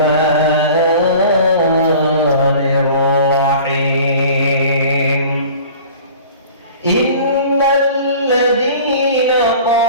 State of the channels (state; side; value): inverted; both; correlation -0.43